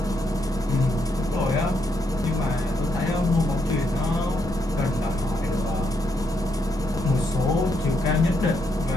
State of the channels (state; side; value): normal; both; correlation 0.78